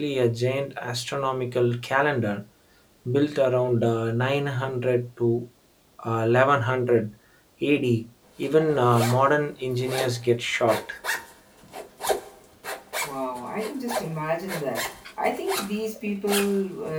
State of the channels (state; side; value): identical; both; correlation 1.00